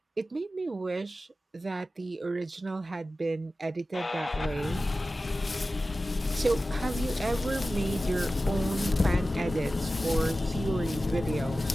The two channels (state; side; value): normal; both; correlation 0.95